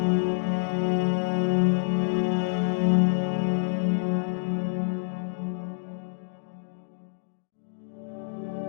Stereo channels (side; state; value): right; silent; digital silence